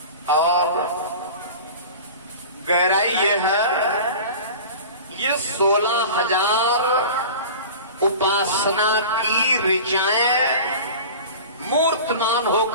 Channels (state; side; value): inverted; both; correlation -0.36